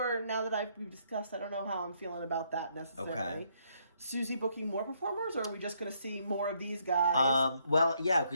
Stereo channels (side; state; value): both; inverted; correlation -0.72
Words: now that we've discussed. I don't know how I'm feeling about that necessarily. Okay. Susie booking more performers, or are we just gonna see more of these guys? Well, yeah,